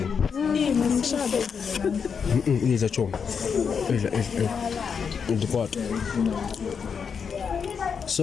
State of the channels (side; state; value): right; quieter; 6.4 dB